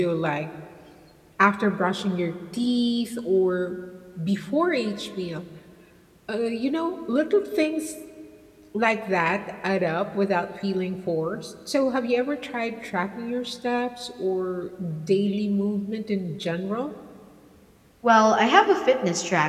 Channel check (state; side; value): identical; both; correlation 1.00